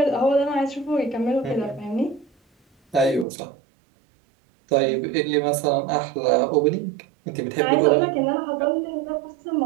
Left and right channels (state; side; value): drops out; left; at 3.2 s